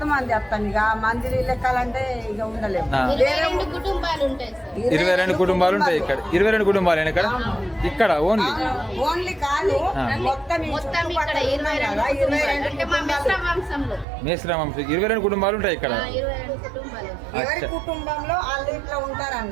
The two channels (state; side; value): drops out; left; at 14.1 s